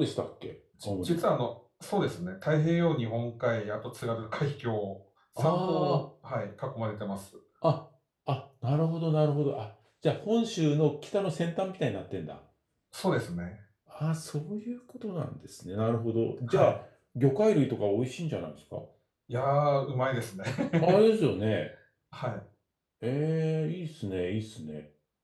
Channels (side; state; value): both; identical; correlation 1.00